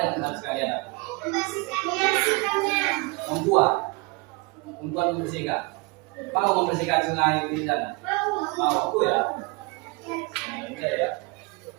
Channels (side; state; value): left; quieter; 27.0 dB